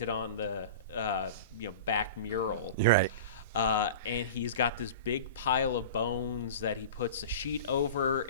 on the back mural. You're right. And he's got this big pile of bones that he puts a sheet over,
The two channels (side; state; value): both; inverted; correlation -0.35